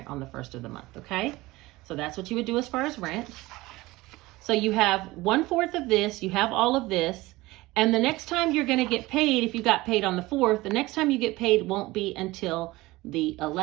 on the 1st of the month, okay? So that's what you would do as far as rent. So you have 1/4 of this, you have all of this, and the next time you're going to get paid, if you got paid on the 4th, the next time you get paid won't be until the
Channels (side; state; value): left; quieter; 19.8 dB